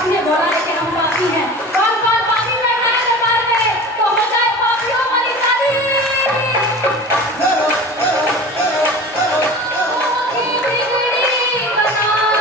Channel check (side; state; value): both; normal; correlation 0.36